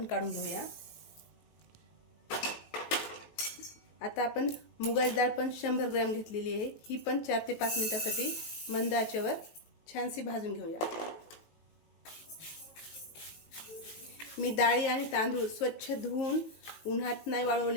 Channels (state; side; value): late; right; 18 ms